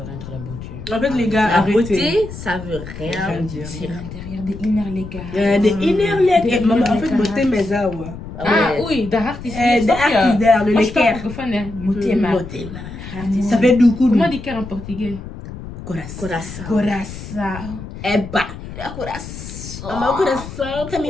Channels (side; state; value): left; noise; rumble, 11 dB below the sound